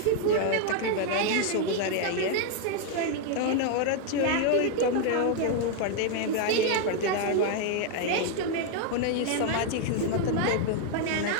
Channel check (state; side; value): different; both; correlation 0.01